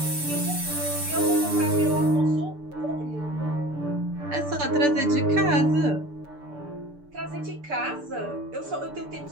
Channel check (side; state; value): left; late; 6.8 ms